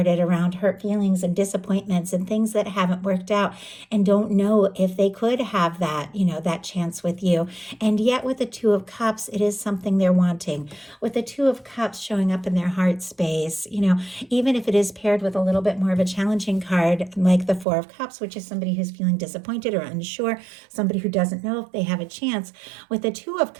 around hurt feelings and disappointments and things that haven't worked out, and don't know if they could have that, that chance with you. And yet with the Two of Cups, it is something they're wanting. With the Two of Cups showing up in their heart space, even if it is paired with a little bit more of a challenging card like the Four of Cups, which is somebody who's feeling disappointed or unsure, somebody who doesn't know if they have a chance. With the Two of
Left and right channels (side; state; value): left; drops out; at 17.7 s